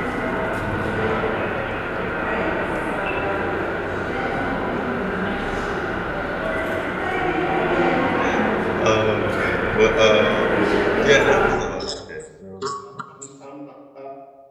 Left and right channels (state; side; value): identical; both; correlation 1.00